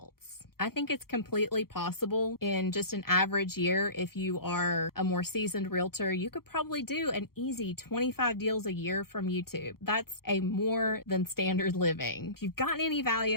I think it's completely possible in just an average year. If you are a more seasoned realtor, you could probably do an easy 25 deals a year from YouTube. That's a more than standard living. If you've gotten any value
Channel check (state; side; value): late; right; 0.94 ms